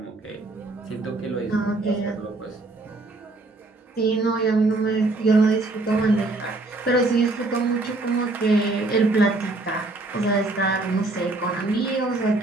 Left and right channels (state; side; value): quieter; left; 3.1 dB